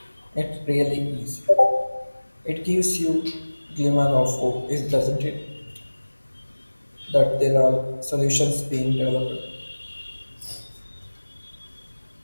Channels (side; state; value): both; inverted; correlation -1.00